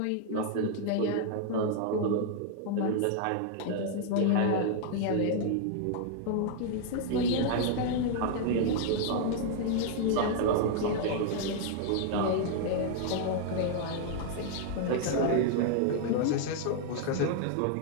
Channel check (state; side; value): different; both; correlation 0.00